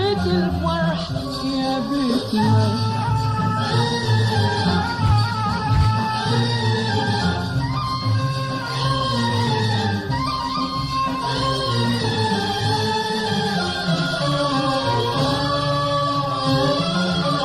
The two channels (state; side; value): identical; both; correlation 1.00